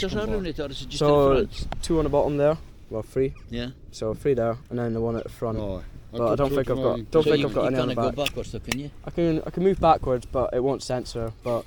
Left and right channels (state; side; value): identical; both; correlation 1.00